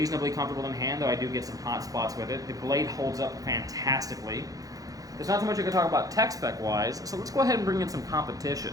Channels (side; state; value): left; late; 0.17 ms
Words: comfortable in hand, though I do get some hot spots with it. The blade holds up fantastically. There's not too much I can talk about tech spec wise, so let's go ahead and bring in some